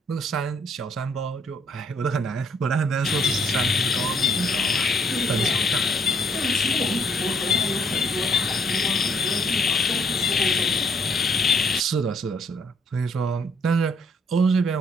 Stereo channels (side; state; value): both; normal; correlation 0.66